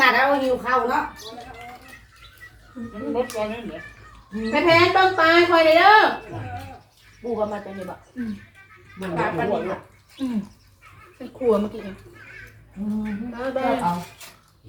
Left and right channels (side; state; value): both; identical; correlation 1.00